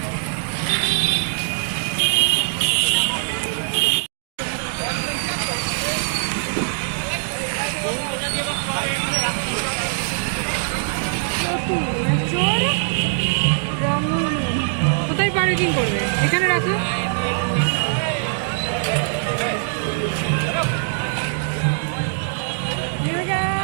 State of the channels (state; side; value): silent; left; digital silence